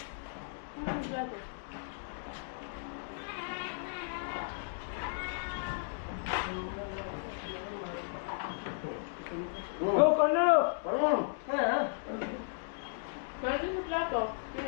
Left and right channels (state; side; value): silent; right; digital silence